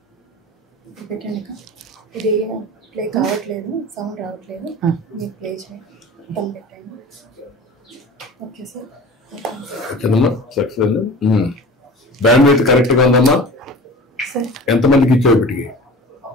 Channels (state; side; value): normal; both; correlation 0.38